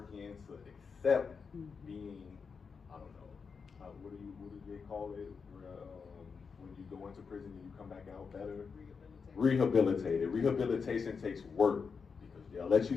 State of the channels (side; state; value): right; quieter; 5.5 dB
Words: in to accept being, I don't know, what do they call it? When you go into prison and you come back out better? Rehabilitated. Rehabilitation takes work because they'll let you